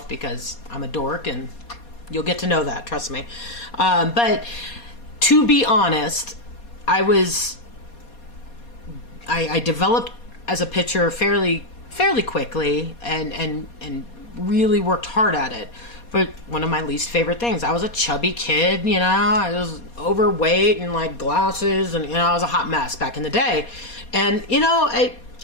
because I'm a dork, and you'll get to know that, trust me. But to be honest, I developed as a pitcher fairly quickly and really worked hard at it. But one of my least favorite things, I was a chubby kid, I was overweight and like glasses, and I was a hot mess back in the day. And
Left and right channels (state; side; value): late; right; 4.2 ms